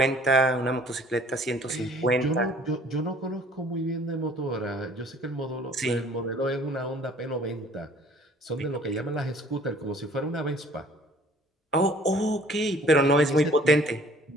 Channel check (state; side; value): normal; both; correlation 0.54